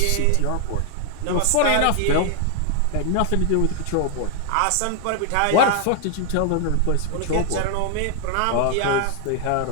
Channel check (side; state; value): both; different; correlation 0.00